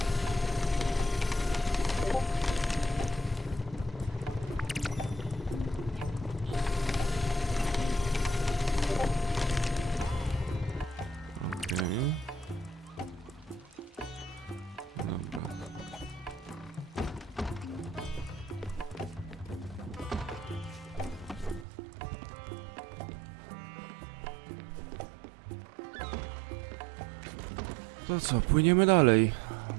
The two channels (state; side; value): drops out; left; at 21.7 s